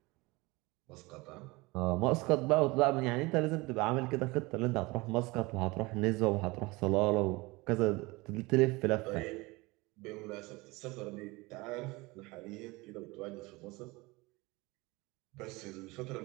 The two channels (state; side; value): quieter; left; 23.3 dB